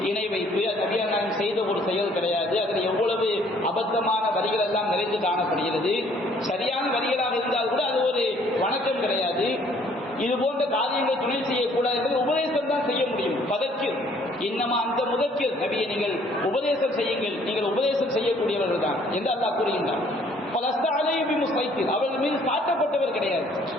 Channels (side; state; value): both; normal; correlation 0.61